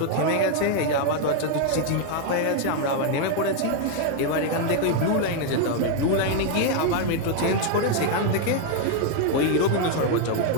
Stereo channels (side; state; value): both; different; correlation 0.00